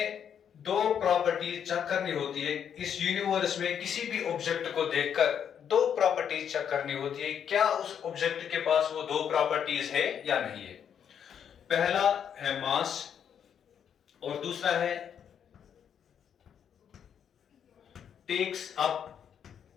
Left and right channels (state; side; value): quieter; right; 8.3 dB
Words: दो प्रॉपर्टीज चेक करनी होती है. इस यूनिवर्स में किसी भी ऑब्जेक्ट को देखकर दो प्रॉपर्टीज चेक करनी होती है. क्या उस ऑब्जेक्ट के पास वो दो प्रॉपर्टीज है या नहीं है. पहला है मास और दूसरा है टेक्स अप